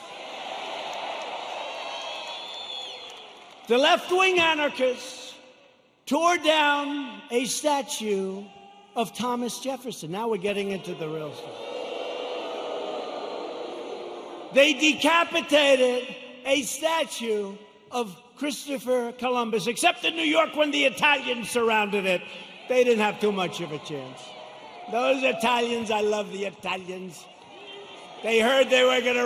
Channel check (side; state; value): both; identical; correlation 1.00